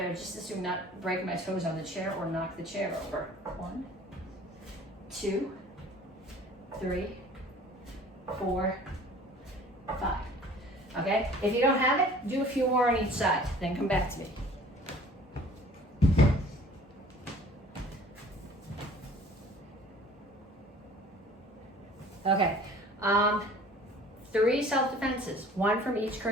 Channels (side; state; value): both; normal; correlation 0.49